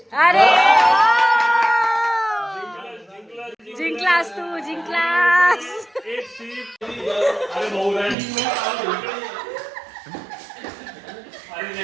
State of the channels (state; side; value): drops out; left; at 8.2 s